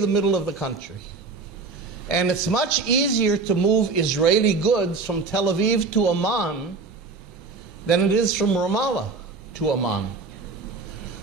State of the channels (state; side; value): quieter; left; 4.2 dB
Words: middle of the country. And it's much easier to move Israeli goods from Tel Aviv to Amman than it is from Ramallah to Amman.